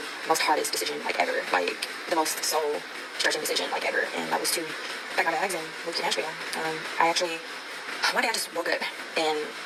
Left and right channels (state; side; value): identical; both; correlation 1.00